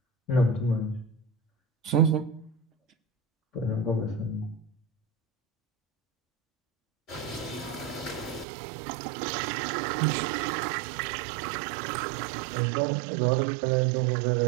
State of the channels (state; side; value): drops out; left; at 8.5 s